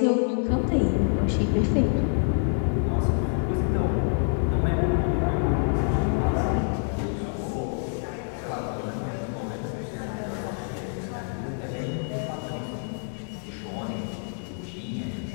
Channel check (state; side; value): silent; right; 60 dB below the other